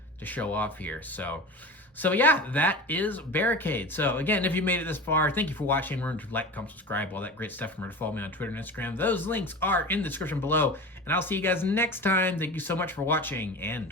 to show off here. So yeah, that is Barricade. So again, if you made it this far, thank you for watching. Remember to like, comment, subscribe, all that great stuff. Remember to follow me on Twitter and Instagram. Those links are in the description below. And I'll see you guys next time. Thank you so much for watching,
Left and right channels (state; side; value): normal; both; correlation 0.32